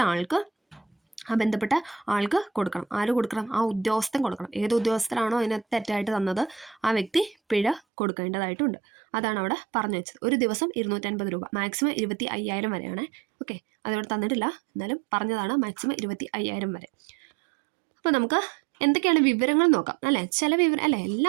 ആൾക്ക് ആ ബന്ധപ്പെട്ട ആൾക്ക് കൊടുക്കണം. ആര് കൊടുക്കണം, ആ ഉദ്യോഗസ്ഥൻ കൊടുക്കണം. ഏത് ഉദ്യോഗസ്ഥരാണോ അതിനകത്ത് തെറ്റായിട്ട് തന്നത് ആ വ്യക്തി പിഴ കൊടുക്കേണ്ടതായിട്ടുണ്ട്. അതാണ് അവിടെ പറഞ്ഞു വെച്ചത്. ഒരു ദിവസം 250 രൂപ, മാക്സിമം 25,000 വരെയാണ്. ഓക്കെ, അതവിടെ തന്നിട്ടില്ല, എന്നാലും പറഞ്ഞതാണ് മാക്സിമം 25,000 വരെ. അപ്പോൾ നമുക്ക് എന്തൊക്കെയാണ് വിവരങ്ങൾ നോക്കാം അല്ലേ. ചില വിവരം അല്ലേ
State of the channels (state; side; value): drops out; left; at 7.8 s